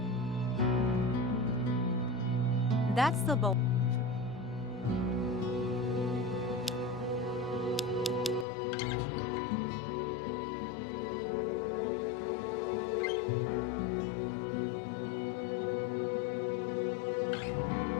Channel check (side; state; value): right; drops out; at 8.5 s